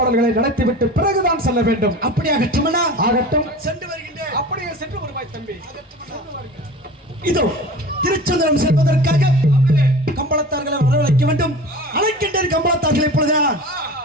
நடத்திவிட்டு பிறகுதான் செல்ல வேண்டும். அப்படியாகட்டும். ஆகட்டும், சென்று வருகின்றேன். அப்படியே சென்று வருவாய் தம்பி. இதோ திருச்செந்தூரம் செல்வதற்காக கம்பளத்தார்களை வரவழைக்க வேண்டும். அழைக்கின்ற கம்பளத்தார்களை இப்பொழுது நான்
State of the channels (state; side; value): normal; both; correlation 0.37